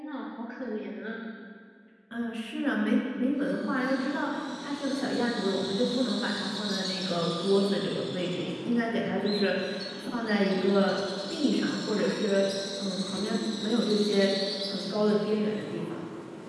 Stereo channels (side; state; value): both; identical; correlation 1.00